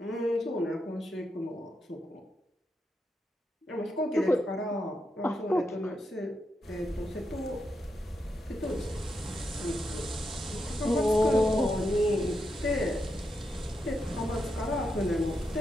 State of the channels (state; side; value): normal; both; correlation 0.84